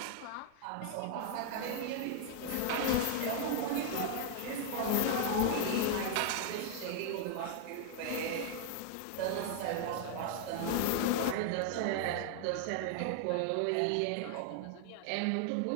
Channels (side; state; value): both; different; correlation 0.00